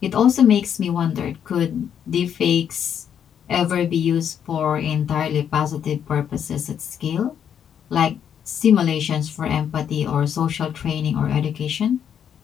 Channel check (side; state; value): right; quieter; 8.6 dB